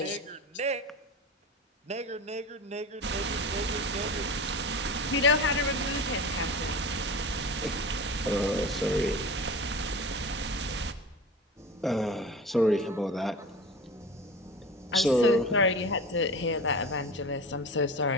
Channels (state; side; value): normal; both; correlation 0.32